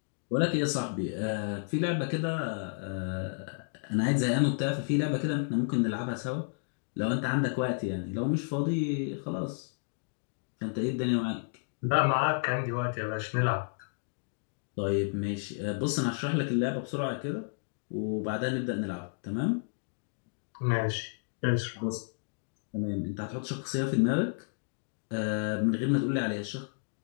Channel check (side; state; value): right; silent; digital silence